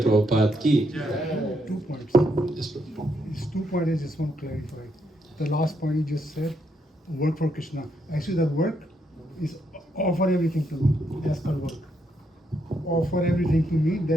Prabhupada ki. 2 points. Yes, Prabhupada. These 2 points I just want to clarify. The last point you just said, work for Krishna. Actually, that work is offer everything to me. That's called work. Offer everything to me,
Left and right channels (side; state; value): both; normal; correlation 0.77